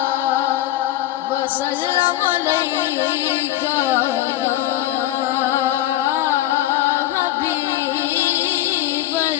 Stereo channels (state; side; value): quieter; right; 14.4 dB